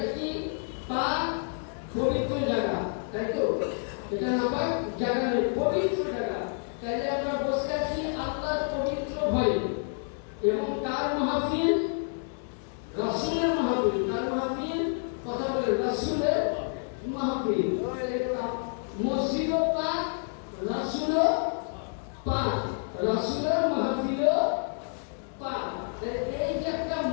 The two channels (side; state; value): right; silent; 58 dB below the other